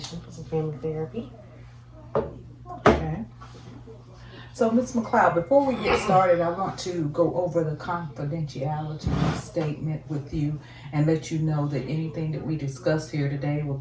for some family therapy. Okay. So, Miss McLeod, before we get started, I want to go over the confidentiality statement with you and let you know that anything that we discuss here today will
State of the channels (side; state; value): both; identical; correlation 1.00